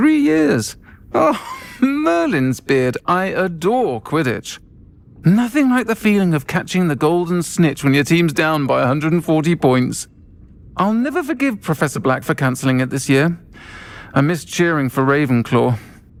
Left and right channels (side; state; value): both; identical; correlation 1.00